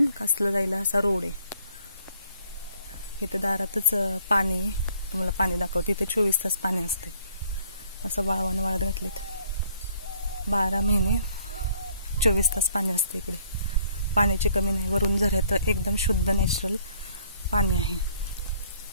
कासला जायला असा रोड आहे. इथं दारातच पाणी, तुम्हाला पाणी दाखवते. इथे 24 तास पाणी असते. असं वाळवानं वाळत घातलेत. 12 महिने 24 तास पाणी असते इकडे. पाण्याची कमी नाही. वरून झऱ्यात एकदम शुद्ध नॅचरल पाणी आहे.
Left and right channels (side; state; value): both; inverted; correlation -0.62